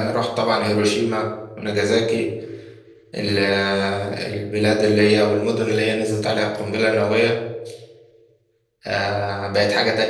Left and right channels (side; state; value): both; identical; correlation 1.00